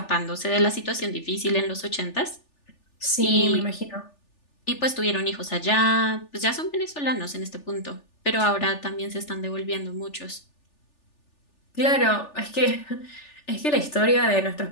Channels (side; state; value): right; late; 3.4 ms